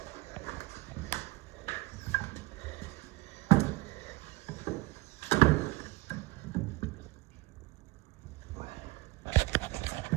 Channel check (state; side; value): quieter; left; 21.8 dB